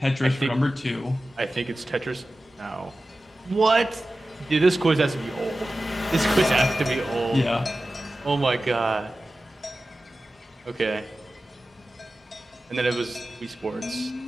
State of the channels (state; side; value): normal; both; correlation 0.95